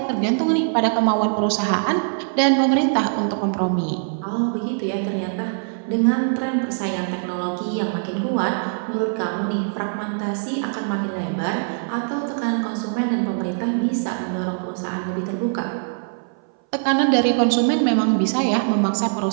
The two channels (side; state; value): left; silent; 60 dB below the other